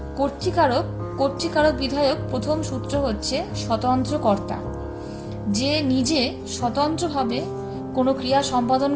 কর্তৃকারক কর্তৃকারক বিধায়ক প্রথম সূত্র হচ্ছে স্বতন্ত্র কর্তা। যে নিজে স্বতন্ত্রভাবে কোনো ক্রিয়া সম্পাদন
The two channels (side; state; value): both; identical; correlation 1.00